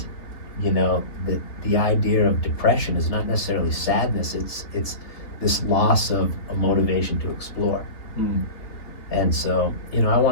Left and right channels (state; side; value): late; right; 3.1 ms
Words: you know, the idea of depression is not necessarily sadness, it's this loss of a motivation to explore. And so, you know, I